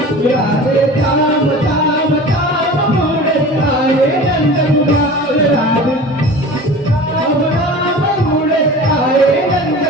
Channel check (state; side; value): normal; both; correlation 0.37